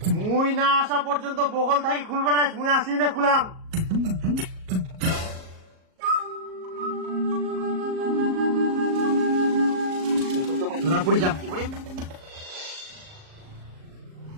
মুই না আসা পর্যন্ত বগল থাকি খুলবে না, মুই আসি না খুলাম। ধরা পড়ি যাম কি করিম?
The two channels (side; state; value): left; late; 38 ms